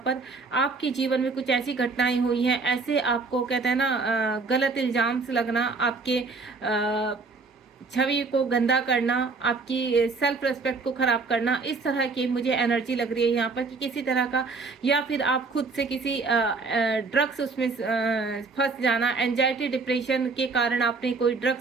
पर। आपके जीवन में कुछ ऐसी घटनाएं हुई हैं, ऐसे आपको, कहते हैं ना, गलत इल्जाम से लगना, आपके छवि को गंदा करना, आपकी सेल्फ रिस्पेक्ट को खराब करना, इस तरह की मुझे एनर्जी लग रही है यहाँ पर कि किसी तरह का, या फिर आप खुद से किसी ड्रग्स उसमें फंस जाना, एंजाइटी डिप्रेशन के कारण आपने कोई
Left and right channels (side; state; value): left; quieter; 4.2 dB